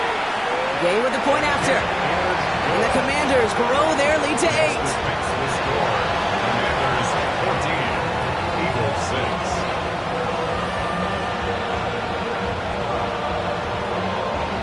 Gay with the point after. And the Commanders grow their lead to 8. Commanders 14, Eagles 6.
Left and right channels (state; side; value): identical; both; correlation 1.00